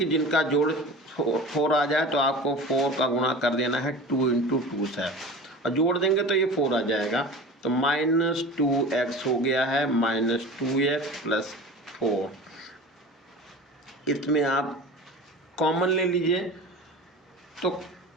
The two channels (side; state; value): both; normal; correlation 0.35